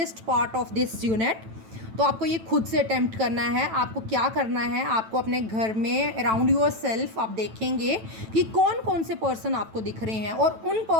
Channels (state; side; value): late; left; 9.1 ms